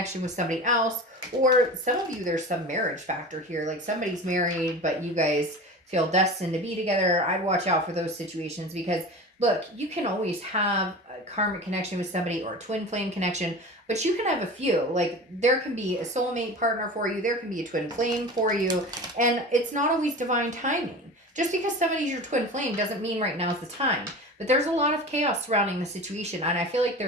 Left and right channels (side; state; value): both; normal; correlation 0.33